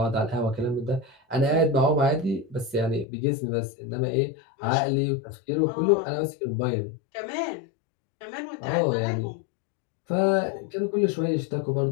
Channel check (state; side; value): drops out; right; at 3.1 s